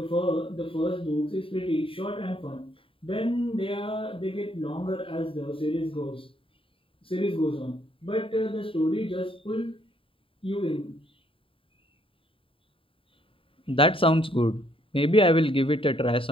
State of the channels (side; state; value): right; late; 0.26 ms